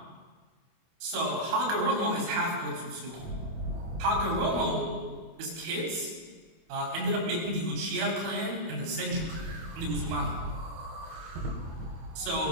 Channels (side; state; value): left; late; 24 ms